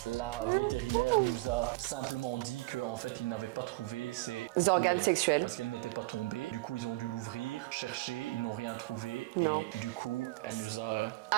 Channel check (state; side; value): quieter; left; 21.3 dB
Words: la vétérinaire nous a simplement dit qu'en fait, ils n'avaient pas trouvé ses Organes coucougnettes sexuels. parce qu'elles n'étaient pas tombées. Du coup, ils ont dû l'ouvrir, chercher, ils n'ont rien trouvé. Et du coup, elle nous a